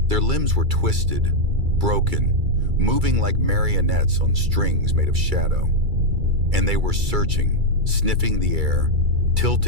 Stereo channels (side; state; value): left; late; 2.3 ms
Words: Their limbs were twisted, broken, moving like marionettes on strings made of shadow. And they were searching, sniffing the air,